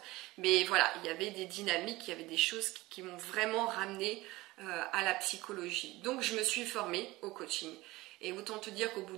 Mais voilà, il y avait des dynamiques, il y avait des choses qui m'ont vraiment ramené à la psychologie. Donc je me suis formée au coaching. Et autant te dire qu'au bout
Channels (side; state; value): left; quieter; 19.8 dB